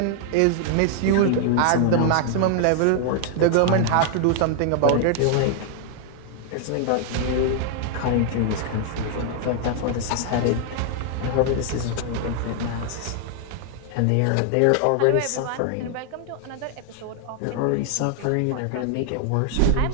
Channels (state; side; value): different; both; correlation 0.00